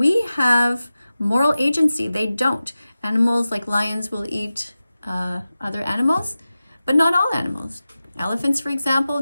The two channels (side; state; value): both; inverted; correlation -0.95